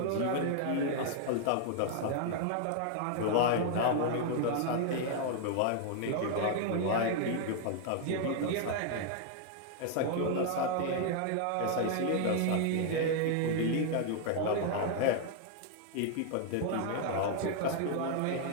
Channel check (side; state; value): both; different; correlation 0.00